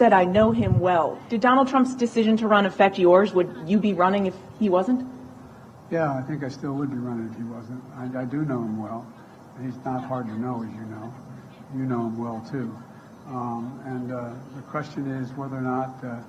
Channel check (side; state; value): both; identical; correlation 1.00